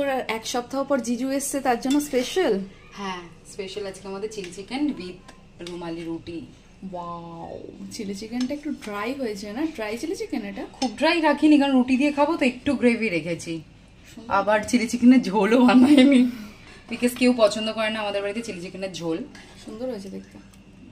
এক সপ্তাহ পর জিজু এসছে, তার জন্য স্পেশাল। হ্যাঁ, স্পেশাল আজকে আমাদের চিলি চিকেন উইথ রুমালি রুটি। ওয়াও, চিলি চিকেনটা একটু ড্রাই হয়েছে না? ড্রাই চিলি চিকেন এটা? খুব ড্রাই রাখিনি, কারণ রুটি দিয়ে খাবো তো একটু গ্রেভি রেখেছি। আবার চিলি চিকেনের ঝোলও বানাইনি, বিকজ কেউ পছন্দ করে না আমাদের বাড়িতে চিলি চিকেনের ঝোল। সুন্দর হয়েছে দেখতে।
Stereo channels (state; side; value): identical; both; correlation 1.00